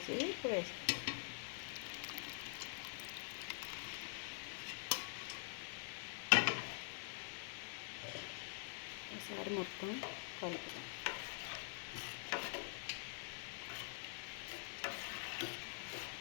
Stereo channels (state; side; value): silent; right; digital silence